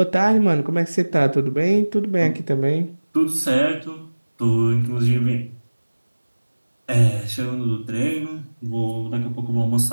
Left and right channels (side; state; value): both; inverted; correlation -1.00